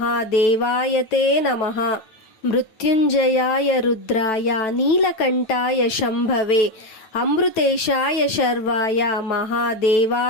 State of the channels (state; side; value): late; right; 9.1 ms